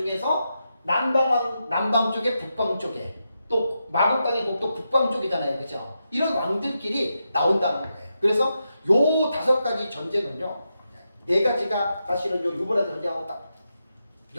남방 쪽에 북방 쪽에 또 마곡 땅의 곡도 북방 쪽이잖아요. 그죠? 이런 왕들끼리 나온다는 거예요. 그래서 요 5가지 전쟁은요, 4가지가 사실은 요 유브라데 전쟁하고 딱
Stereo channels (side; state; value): both; inverted; correlation -0.86